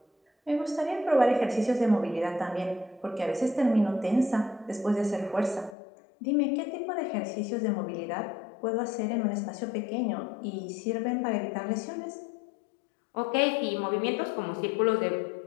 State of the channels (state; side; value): drops out; right; at 5.8 s